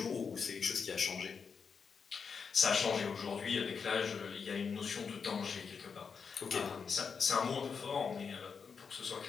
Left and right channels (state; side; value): quieter; right; 5.9 dB